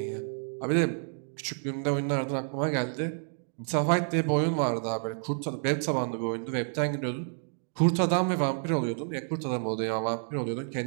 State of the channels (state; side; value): silent; left; digital silence